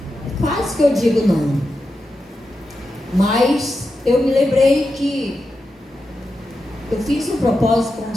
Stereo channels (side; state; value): both; normal; correlation 0.89